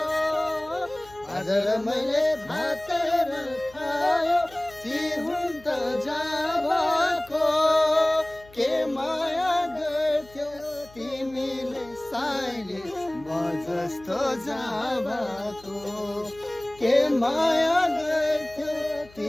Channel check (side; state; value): left; noise; hum, 24 dB below the sound